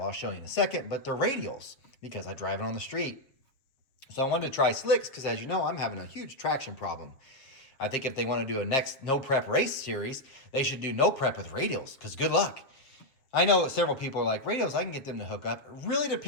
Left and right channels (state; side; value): late; right; 7.3 ms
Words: I'll show you in a second, but they're radials, because I drive it on the street. So I wanted to try slicks, because as you know, I'm having a huge traction problem. I think if they want to do a next no prep race series, they should do no prep with radials, because good luck. I know several people are like, radials, I can get them to hook up. It really